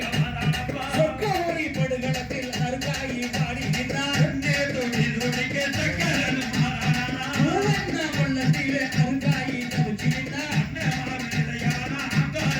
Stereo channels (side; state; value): both; identical; correlation 1.00